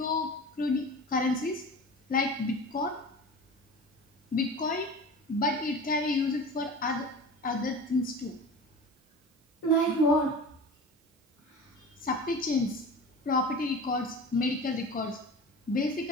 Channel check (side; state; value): both; normal; correlation 0.35